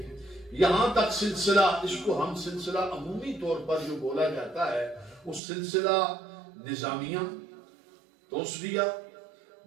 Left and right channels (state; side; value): drops out; left; at 5.4 s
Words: یہاں تک سلسلہ، اس کو ہم سلسلہ عمومی طور پر جو بولا جاتا ہے وہ سلسلہ نظامیہ، توسویہ،